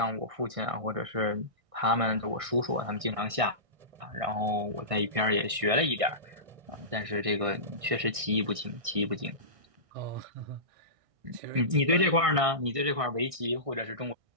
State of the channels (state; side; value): late; left; 1.6 ms